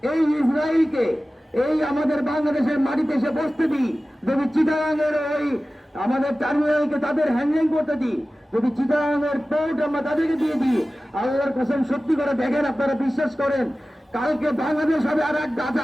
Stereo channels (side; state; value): both; normal; correlation 0.96